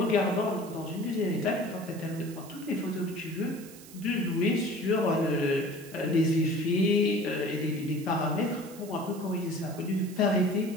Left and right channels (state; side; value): noise; right; hiss, 19 dB below the sound